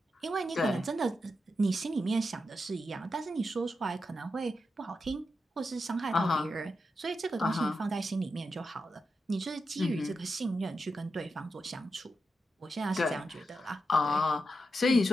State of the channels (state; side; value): normal; both; correlation 0.87